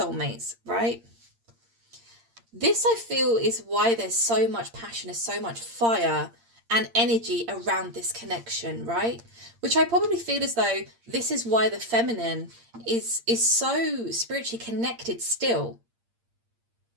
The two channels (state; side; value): late; left; 8.7 ms